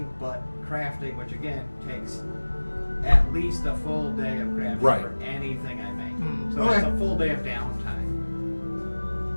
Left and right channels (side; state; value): both; inverted; correlation -1.00